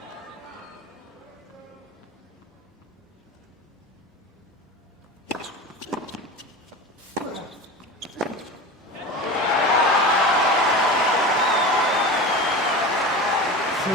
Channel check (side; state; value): both; normal; correlation 0.30